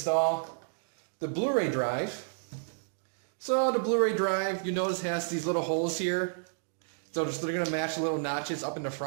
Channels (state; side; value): silent; left; digital silence